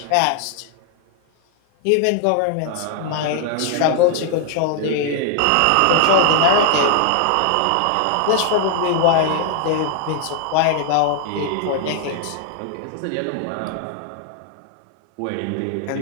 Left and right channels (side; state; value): both; different; correlation 0.00